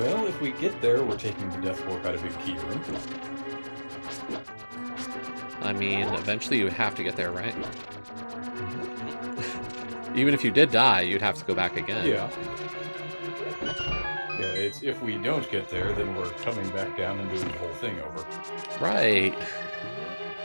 if we get there, we're taking the Death Warp out of Big Key Room. I mean, eventually you would have to get there, right? Even if you did die, you'd have to go back again. Yeah. Yeah, it's if we don't get there, then we're coming back down and doing the whole thing over. Right.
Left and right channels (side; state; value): both; inverted; correlation -1.00